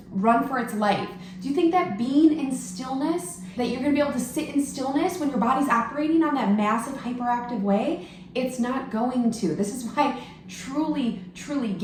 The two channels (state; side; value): identical; both; correlation 1.00